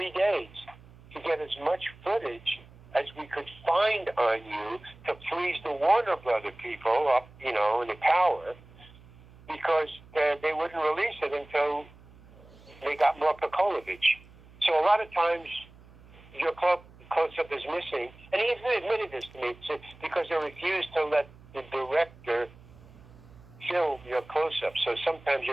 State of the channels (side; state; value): right; noise; hum, 23 dB below the sound